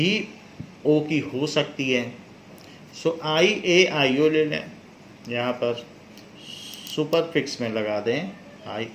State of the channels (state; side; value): identical; both; correlation 1.00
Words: ओ की हो सकती है। सो I-A-I-O ले लें, यहाँ पर सुपर फिक्स में लगा दें